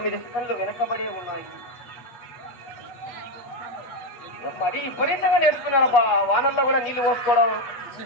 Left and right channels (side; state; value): right; late; 8.2 ms